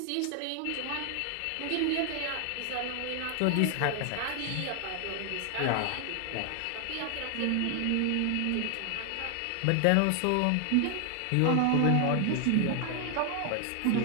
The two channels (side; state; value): both; different; correlation 0.00